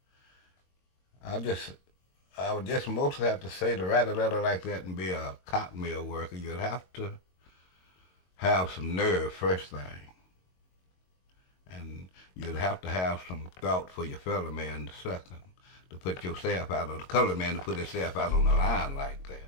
I would just mostly have to say to write a letter like that and be a cotton mill worker, you'd have to have some nerve first thing. And you'd have to have some thought for your fellow man the second, to put yourself out, or the colored man to put himself out on the line like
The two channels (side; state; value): right; late; 22 ms